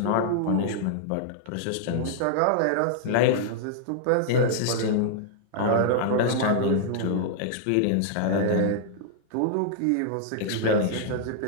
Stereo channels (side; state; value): both; different; correlation -0.01